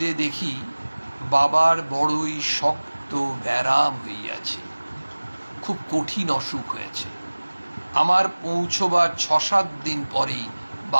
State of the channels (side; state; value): both; inverted; correlation -1.00